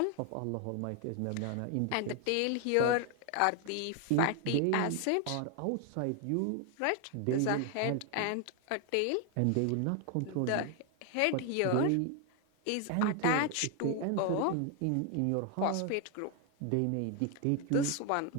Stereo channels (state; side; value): different; both; correlation 0.01